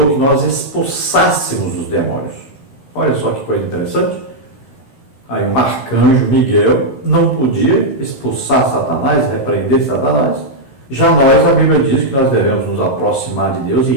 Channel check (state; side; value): late; right; 15 ms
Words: que nós expulsássemos os demônios. Olha só que coisa interessante. Aí um arcanjo Miguel não podia expulsar Satanás, repreender Satanás. Já nós, a Bíblia diz que nós devemos nos aproximar de Deus e